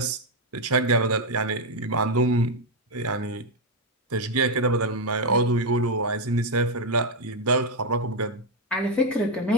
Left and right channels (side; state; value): both; normal; correlation 0.03